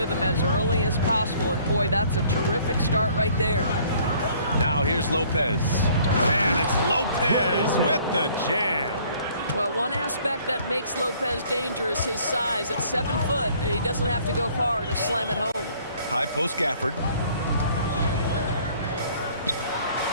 as early as possible. And boy, that's a terrific start right there. Now here's Lopez. And it's Lopez with the jam. Well, one aspect that makes Lopez dangerous, his size. At 7 foot, he doesn't have to go far to slam it home. High post Gafford.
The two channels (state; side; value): inverted; both; correlation -0.58